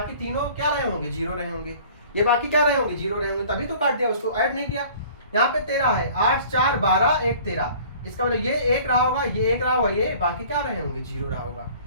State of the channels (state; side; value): inverted; both; correlation -0.49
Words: तीनों क्या रहे होंगे, 0 रहे होंगे, ये बाकी क्या रहे होंगे, 0 रहे होंगे, तभी तो काट दिया, उसको ऐड नहीं किया। यहाँ पे 13 है, 8 4 12 1 13, इसका मतलब ये 1 रहा होगा, ये 1 रहा होगा, ये बाकी क्या रहे होंगे, 0 रहा होगा।